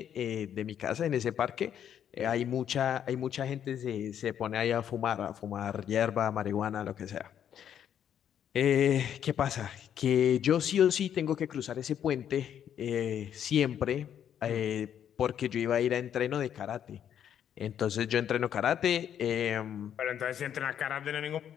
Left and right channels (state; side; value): quieter; right; 9.4 dB